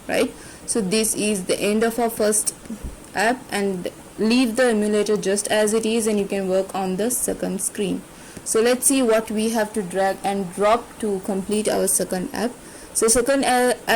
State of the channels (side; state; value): both; identical; correlation 1.00